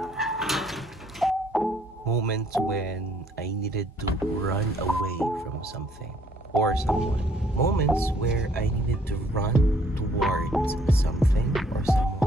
Moments when I needed to run away from something or someone. Moments where I needed to run towards something or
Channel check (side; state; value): both; normal; correlation 0.64